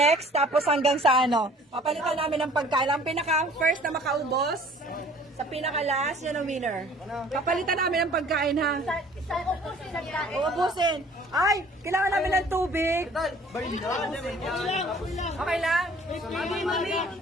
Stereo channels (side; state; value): both; normal; correlation 0.52